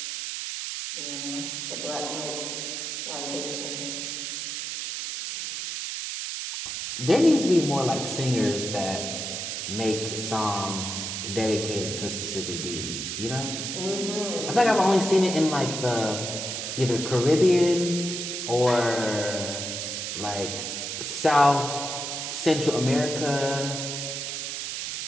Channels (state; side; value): noise; right; hiss, 4 dB below the sound